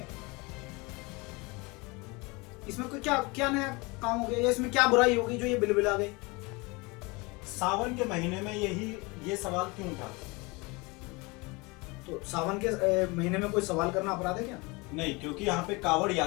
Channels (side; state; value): right; quieter; 26.1 dB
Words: इसमें कोई क्या क्या नया काम हो गया, या इसमें क्या बुराई होगी जो ये बिलबिला गई? सावन के महीने में ये सवाल क्यों था? तो सावन के महीने में कोई सवाल करना अपराध है क्या? नहीं, क्योंकि यहाँ पे कावड़